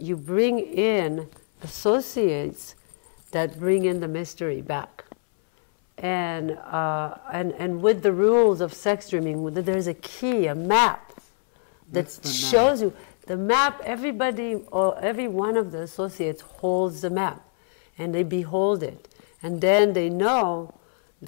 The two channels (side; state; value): right; silent; 62 dB below the other